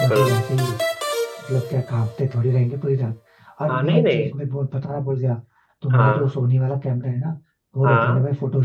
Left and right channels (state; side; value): identical; both; correlation 1.00